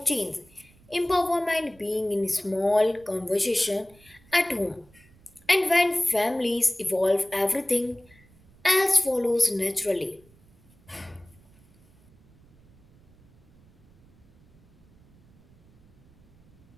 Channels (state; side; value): noise; right; rumble, 29 dB below the sound